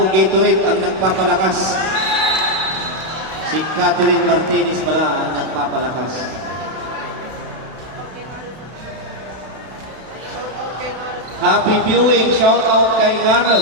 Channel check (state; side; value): late; left; 32 ms